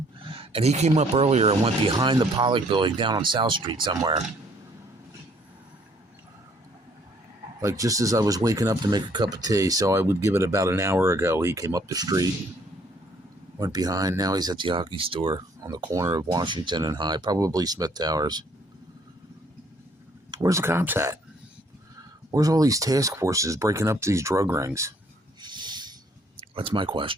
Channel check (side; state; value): both; normal; correlation 0.63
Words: And he came up earlier and went behind the Pollock building down on South Street somewhere. Like just as I was waking up to make a cup of tea, so I would give it about an hour ago, he came up the street, went behind. Now he's at the hockey store on the corner of Washington and High, probably Smith Towers. Where's the cops at? Where's all these task forces breaking up these drug rings? That's my